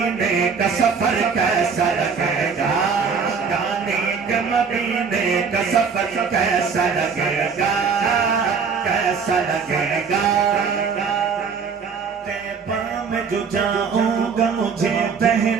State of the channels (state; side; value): quieter; left; 5.7 dB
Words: کا سفر کیسا لگے گا. جانے کے مدینے کا سفر کیسا لگے گا. کیسا لگے گا. جو جاؤں گا مجھے